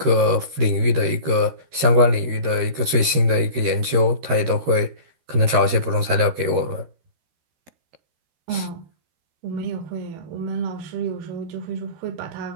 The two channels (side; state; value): left; late; 13 ms